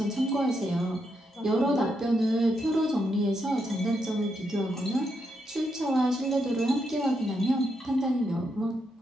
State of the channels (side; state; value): both; normal; correlation 0.81